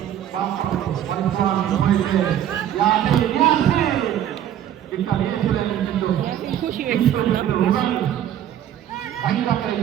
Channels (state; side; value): quieter; left; 10.8 dB